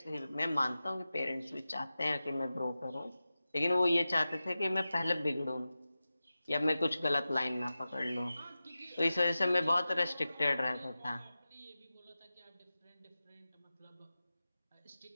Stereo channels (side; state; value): both; inverted; correlation -0.95